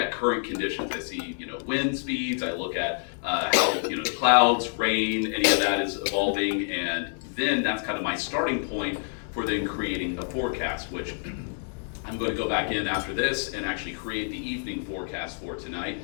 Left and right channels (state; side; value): silent; right; 60 dB below the other